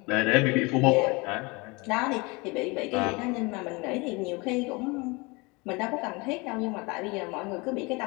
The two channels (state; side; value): quieter; right; 26.5 dB